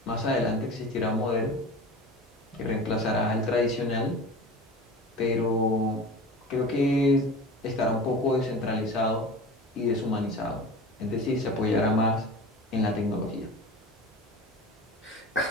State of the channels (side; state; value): both; normal; correlation 0.35